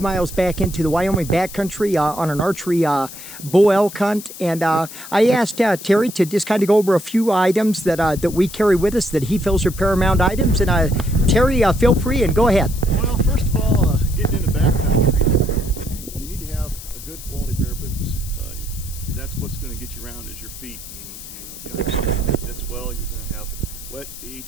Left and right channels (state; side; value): noise; left; hiss, 13 dB below the sound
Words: miles back into the Wyoming backcountry on an archery bull elk hunt, and I asked Terry to just kind of go over a few items that we carry with us that he feels are paramount items. And Terry, feel free and go ahead. Well, first of all, getting into backcountry, you need to have a good quality pair of boots. That's what's going to get you around is your feet. And, if you don't have something that fits well, you're going to have wet feet.